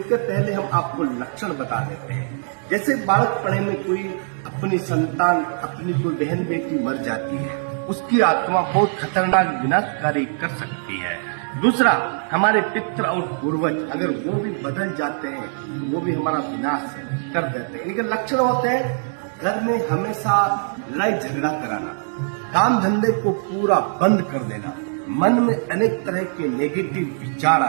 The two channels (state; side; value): silent; left; digital silence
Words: पहले हम आपको लक्षण बता देते हैं। जैसे बालकपने में कोई अपनी संतान, अपनी कोई बहन बेटी मर जाती है, उसकी आत्मा बहुत खतरनाक विनाशकारी कर सकती है। दूसरा, हमारे पितृ और पूर्वज अगर वो भी बदल जाते हैं तो वो भी हमारा विनाश कर देते हैं। इनके लक्षण होते हैं घर में हमेशा लड़ाई झगड़ा कराना, काम धंधे को पूरा बंद कर देना, मन में अनेक तरह के नेगेटिव विचार